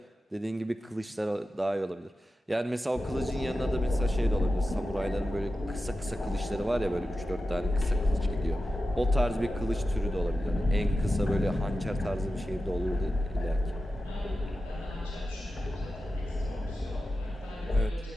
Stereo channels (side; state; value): both; normal; correlation 0.92